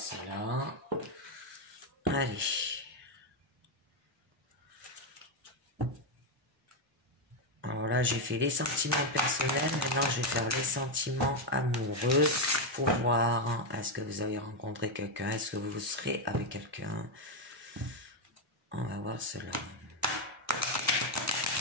là. Allez. Alors là, j'ai fait les sentiments personnels. Maintenant, je vais faire les sentiments amoureux pour voir, hein, est-ce que vous avez rencontré quelqu'un, est-ce que vous serez avec quelqu'un. On va voir cela.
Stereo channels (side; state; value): both; normal; correlation 0.04